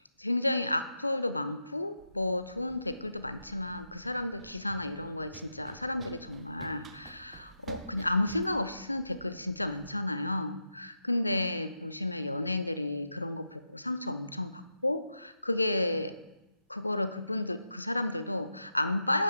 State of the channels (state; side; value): inverted; both; correlation -0.88